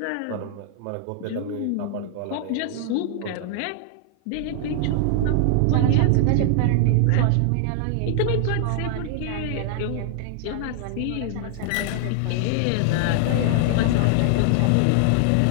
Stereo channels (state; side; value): different; both; correlation 0.00